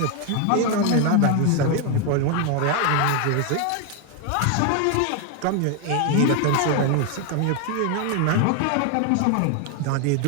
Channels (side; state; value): both; different; correlation 0.01